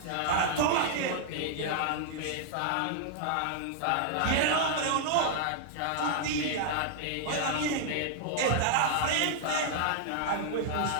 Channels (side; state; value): both; different; correlation -0.01